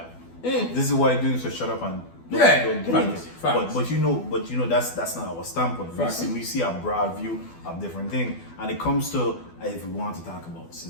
This is why I'm doing, so shut up and don't do facts, this. facts. But you know that's not our standpoint. Facts. We see a broad view of different things. And it comes to, if we want to talk about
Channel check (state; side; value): late; right; 12 ms